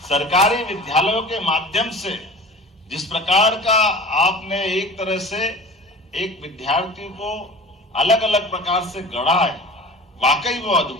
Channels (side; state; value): both; normal; correlation 0.39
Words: सरकारी विद्यालयों के माध्यम से जिस प्रकार का आपने एक तरह से एक विद्यार्थी को अलग अलग प्रकार से गढ़ा है, वाकई वो